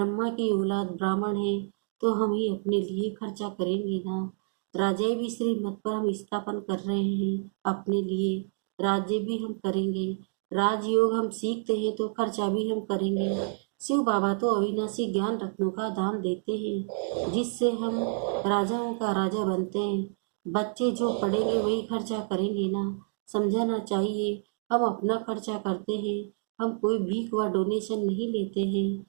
की औलाद ब्राह्मण हैं तो हम ही अपने लिए खर्चा करेंगे ना। राज्य भी श्रीमत पर हम स्थापन कर रहे हैं अपने लिए। राज्य भी हम करेंगे। राजयोग हम सीखते हैं तो खर्चा भी हम करेंगे। शिव बाबा तो अविनाशी ज्ञान रत्नों का दान देते हैं जिससे हम राजाओं का राजा बनते हैं। बच्चे जो पढ़ेंगे वही खर्चा करेंगे ना। समझाना चाहिए हम अपना खर्चा करते हैं। हम कोई भीख व डोनेशन नहीं लेते हैं,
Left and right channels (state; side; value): silent; left; 59 dB below the other